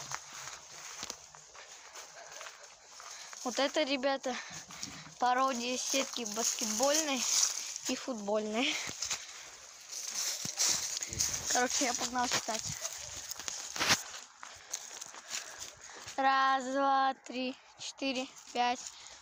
Вот это, ребята, пародия сетки баскетбольной и футбольной. Короче, я погнал читать. 1, 2, 3, 4, 5,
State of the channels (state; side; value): identical; both; correlation 1.00